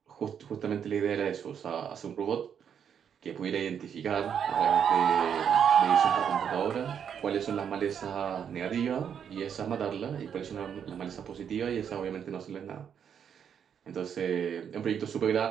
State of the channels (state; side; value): quieter; left; 8.0 dB